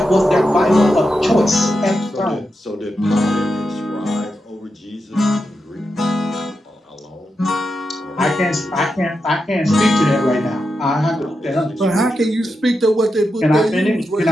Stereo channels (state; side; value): normal; both; correlation 0.87